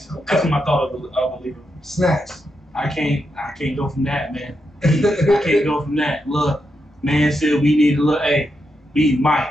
That's what I thought of a leader. Snacks. I can't go from that, man. I can't go from that. Look, man said we need to look, hey, we need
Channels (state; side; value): normal; both; correlation 0.84